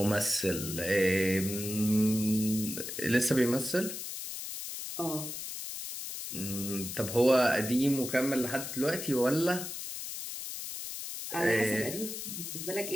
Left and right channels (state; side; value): noise; left; hiss, 7 dB below the sound